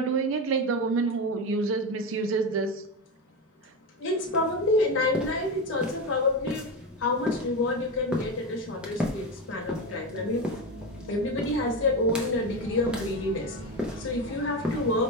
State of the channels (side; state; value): both; normal; correlation 0.18